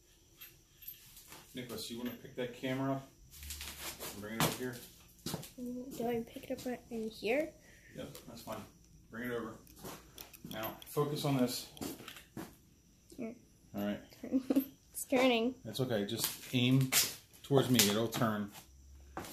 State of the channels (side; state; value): both; identical; correlation 1.00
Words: Nicholas, you want to pick that camera up and bring it over here? Do I pick it up right in here? Yep, that's fine. Bring it over. Now, focus on this. Here. All right. It's turning. That's okay. Just aim towards me. It'll turn. All